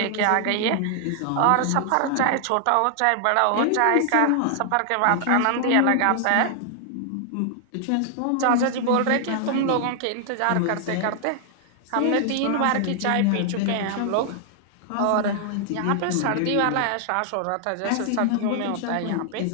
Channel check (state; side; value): different; both; correlation 0.00